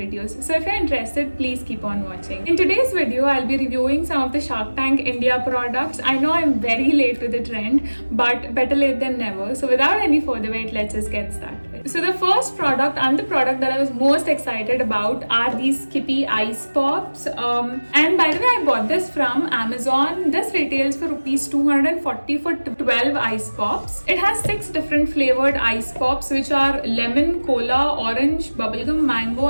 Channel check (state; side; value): inverted; both; correlation -1.00